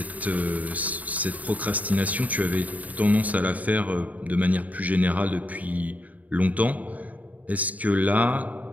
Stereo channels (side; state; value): left; late; 0.073 ms